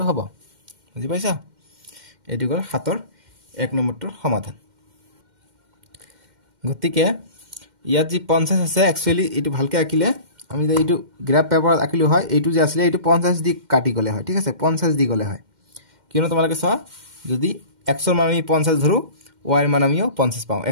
হ'ব বুজি পাইছা এটো গল 7 ৰ 1 নম্বৰটোৰ সমাধান গতিকে ইয়াত যি 50 আছে একচুয়ালি এটো ভালকে আঁকিলে আমি যে এটো গ্ৰাফ পেপাৰত আঁকিলো হয় এটো যে আছিল এটো 50 দি কাটি গলে হয় ঠিক আছে 50 দি গলে হয় কিয়নো তোমালোকে চোৱা যদি x ৰ মান আমি 50 ধৰো y ৰ মান আমিও 50 পাওঁ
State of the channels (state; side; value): late; left; 2.1 ms